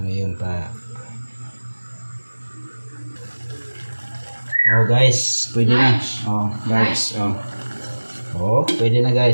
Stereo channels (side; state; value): both; inverted; correlation -1.00